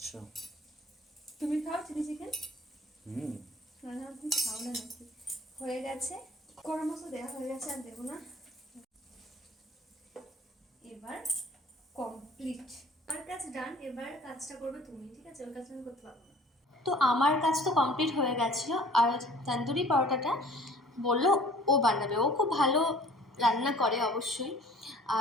তুমি খাও চিলি চিকেন? হুম না তুমি খাও না নাকি? হয়ে গেছে, গরম মশলা দেওয়া হয়ে গেছে, আর দেবো না। এবার কমপ্লিট, আমার কাজ ডান। এবার কাজটা করবে তুমি, ঠিক আছে? ওর কাজটা আমি করতে পারবো না। তো আমার কাজ তো কমপ্লিট হয়ে গেছিলো, আর তন্দুরি পরোটাটা বললো ও বানাবে। ও খুব ভালো রান্না করে অবশ্যই।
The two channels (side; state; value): both; normal; correlation 0.50